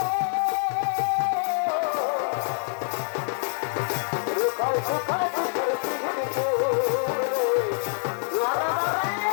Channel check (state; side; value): silent; right; digital silence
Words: রুখাই সুখাই দুঃখের পিড়িতে